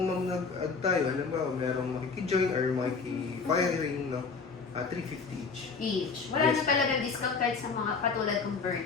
nag-add tayo, alam ba, merong makikijoin or makiki-firing, no? 350 each. Each. Wala Yes. na talagang discount kahit sa mga katulad ng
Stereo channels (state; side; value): quieter; right; 4.9 dB